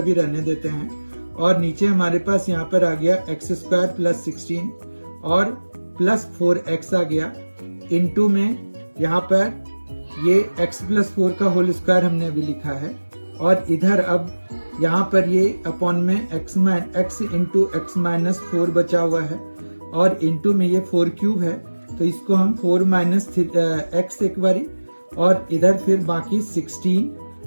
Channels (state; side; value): inverted; both; correlation -1.00